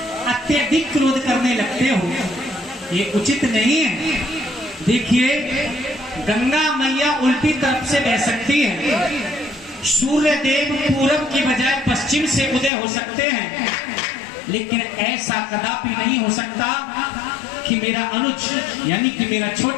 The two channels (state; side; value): drops out; right; at 12.7 s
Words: अत्यधिक क्रोध करने लगते हो, ये उचित नहीं है। देखिए, गंगा मैया उल्टी तरफ से बह सकती है, सूर्य देव पूरब की बजाय पश्चिम से उदय हो सकते हैं, लेकिन ऐसा कदापि नहीं हो सकता कि मेरा अनुज यानी कि मेरा